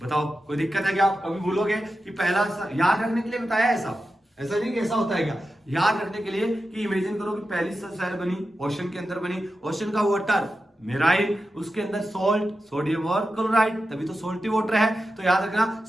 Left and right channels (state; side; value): normal; both; correlation 0.91